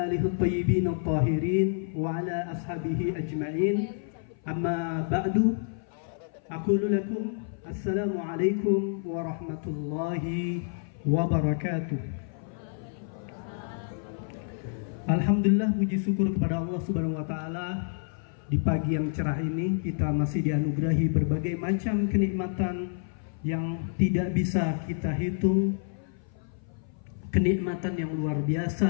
alihi at-tayyibin at-tahirin wa ala ashabihi ajma'in. Amma ba'du, aqulu lakum assalamu alaikum warahmatullahi wabarakatuh. Alhamdulillah, puji syukur kepada Allah Subhanahu wa taala. Di pagi yang cerah ini kita masih dianugerahi berbagai macam kenikmatan yang tidak bisa kita hitung. Kenikmatan yang luar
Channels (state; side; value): silent; right; 55 dB below the other